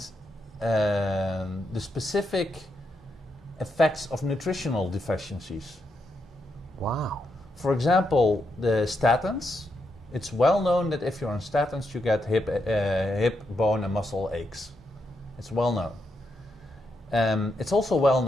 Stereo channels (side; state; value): both; normal; correlation 0.81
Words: the specific effects of nutritional deficiencies. Wow. For example, the statins. It's well known that if you're on statins, you get hip, bone, and muscle aches. It's well known. It's also well